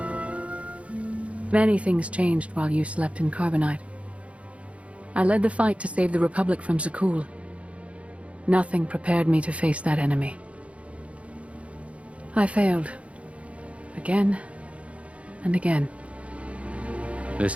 Many things changed while you slept in Carbonite. I led the fight to save the Republic from Zakul. Nothing prepared me to face that enemy. I failed. Again and again.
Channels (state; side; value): late; left; 0.063 ms